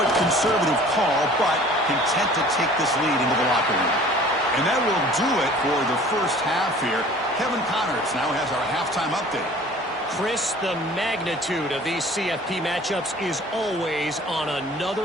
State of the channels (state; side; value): normal; both; correlation 0.48